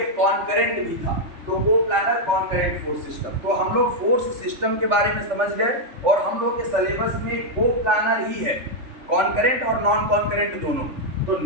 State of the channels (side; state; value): left; late; 3.5 ms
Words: कॉन्करेंट भी था, तो कोप्लानर कॉन्करेंट फोर्स सिस्टम। तो हम लोग फोर्स सिस्टम के बारे में समझ गए और हम लोग के सिलेबस में कोप्लानर ही है, कॉन्करेंट और नॉन कॉन्करेंट दोनों। तो